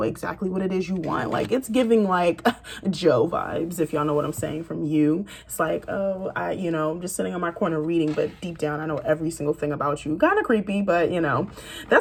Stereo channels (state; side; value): identical; both; correlation 1.00